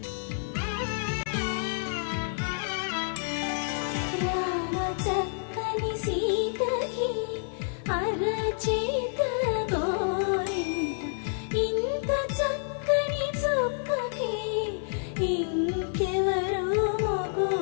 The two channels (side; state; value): right; silent; digital silence